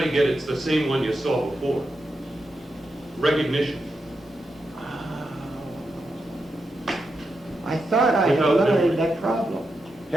you get it's the same one you saw before? Recognition. I thought I had eliminated that problem.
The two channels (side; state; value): both; normal; correlation 0.87